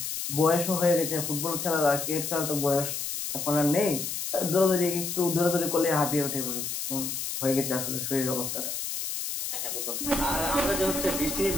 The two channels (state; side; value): noise; left; hiss, 4 dB below the sound